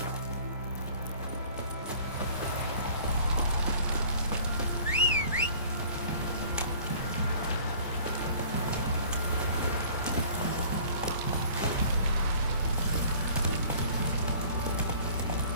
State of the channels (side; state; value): both; inverted; correlation -0.50